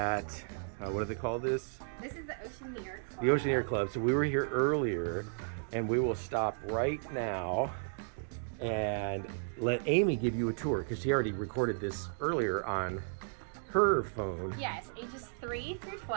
what do they call this? This is the Oceaneer Club. The Oceaneer Club. So we were here earlier, and we will stop right now and let Amy give you a tour because she already recorded this earlier on her phone. Yes, ages 3 through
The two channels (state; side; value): silent; left; digital silence